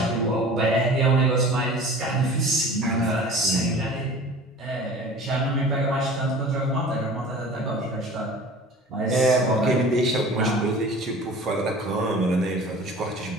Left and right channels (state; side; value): normal; both; correlation 0.42